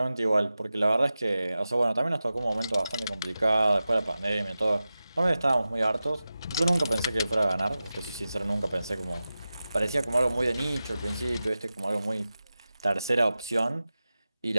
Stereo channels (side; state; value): both; inverted; correlation -0.94